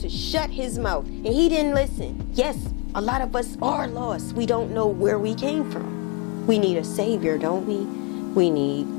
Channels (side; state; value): right; quieter; 27.2 dB